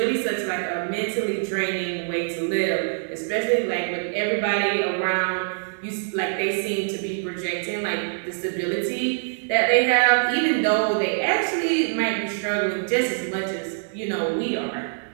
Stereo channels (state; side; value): silent; left; digital silence